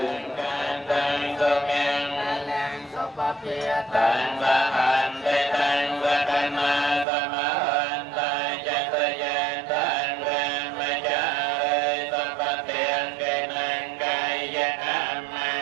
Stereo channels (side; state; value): left; drops out; at 7.1 s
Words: ការតាំងសុំយ៉ាងតាំងសុបភាតាំងបានទេតាំងវកណាសមនតាចតយាតាំងរាមចារិសបតិអង្គេនង្កាយអម